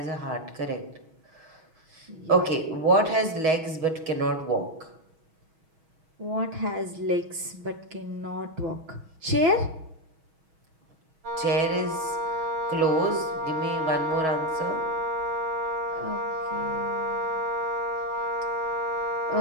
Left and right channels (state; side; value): late; left; 6.3 ms